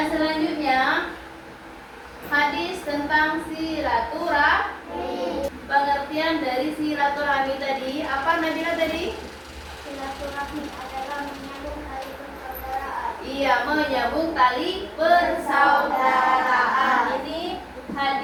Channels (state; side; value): identical; both; correlation 1.00